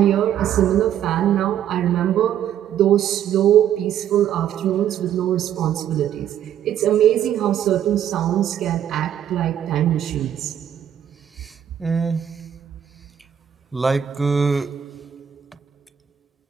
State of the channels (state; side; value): quieter; left; 9.9 dB